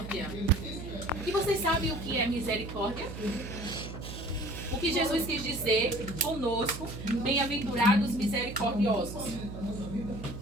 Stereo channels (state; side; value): noise; right; hum, 10 dB below the sound